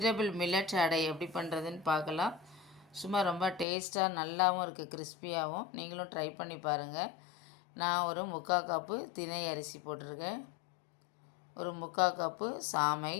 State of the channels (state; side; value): drops out; right; at 3.7 s